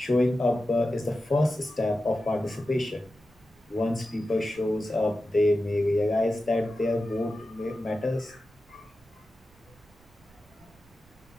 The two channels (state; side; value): noise; right; rumble, 29 dB below the sound